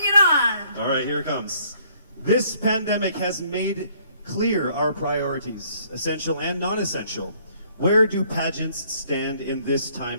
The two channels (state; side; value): inverted; both; correlation -0.63